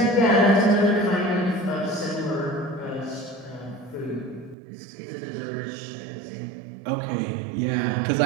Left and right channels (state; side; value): drops out; left; at 4.5 s